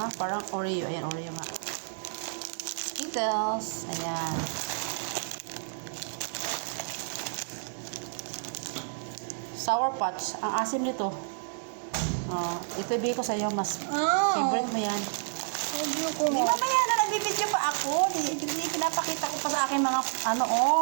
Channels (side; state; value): left; silent; digital silence